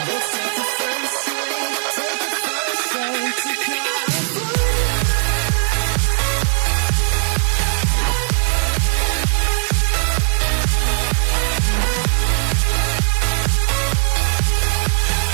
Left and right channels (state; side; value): silent; left; 67 dB below the other